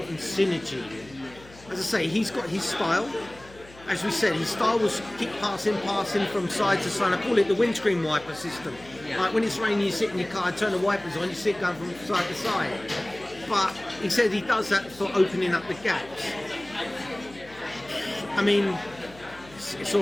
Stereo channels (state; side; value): noise; left; hum, 22 dB below the sound